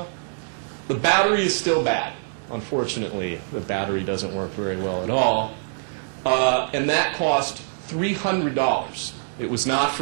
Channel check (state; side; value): silent; left; digital silence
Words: The battery is still bad. Unfortunately, the battery doesn't work very well at all. And that cost $300. It was not